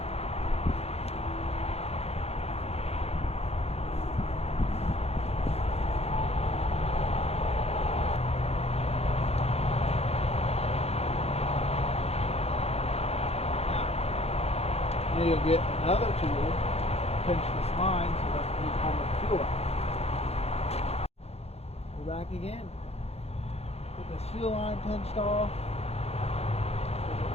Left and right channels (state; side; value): late; right; 0.30 ms